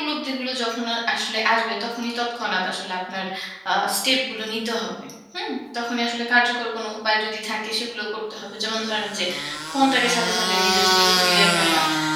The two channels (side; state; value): both; identical; correlation 1.00